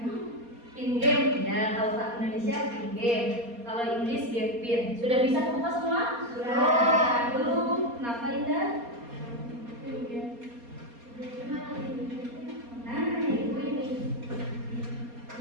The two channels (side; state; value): left; late; 4.2 ms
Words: Pin game ya. Kalau tak Indonesia pin game. Kalau Inggris game pin. Sudah bisa kebuka semua? Sudah. Belum. Kenapa Indah? Nah, itu ini.